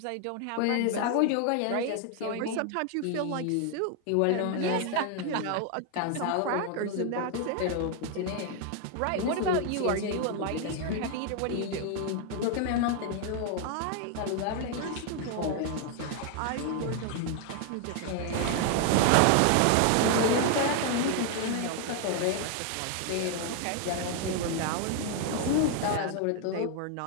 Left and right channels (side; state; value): both; different; correlation 0.00